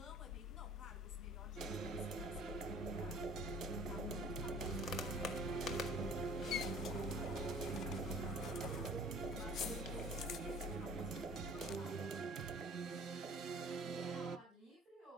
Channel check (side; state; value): both; normal; correlation 0.50